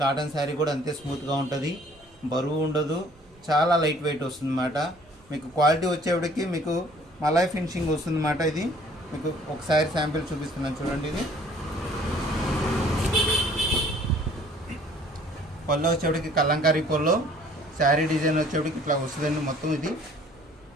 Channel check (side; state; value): both; normal; correlation 0.56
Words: కాటన్ శారీ కూడా అంతే స్మూత్గా ఉంటుంది, బరువు ఉండదు, చాలా లైట్ వెయిట్ వస్తుందన్నమాట. మీకు క్వాలిటీ వచ్చేప్పటికి మీకు మలై ఫినిషింగ్ వస్తుందన్నమాట. ఇది మీకు ఒకసారి శాంపిల్ చూపిస్తున్నాను చూడండి. ఇది పళ్ళు వచ్చేటికి కలంకారీ పళ్ళు, శారీ డిజైన్ వచ్చేటికి ఇట్లా వస్తుందండి మొత్తం. ఇది